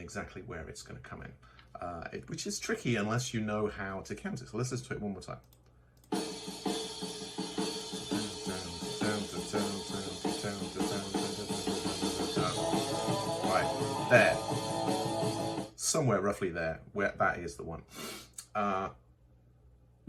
where it's going to come in, which is tricky unless you know how to count it. So let's listen to it one more time. Right, there. Somewhere roughly there, where that is the one. Well,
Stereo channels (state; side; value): identical; both; correlation 1.00